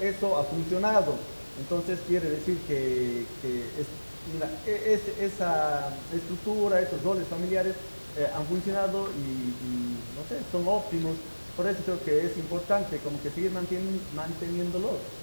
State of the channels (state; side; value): inverted; both; correlation -1.00